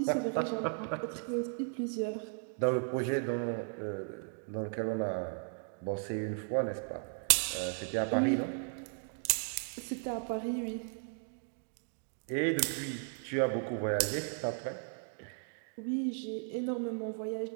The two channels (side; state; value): left; silent; 54 dB below the other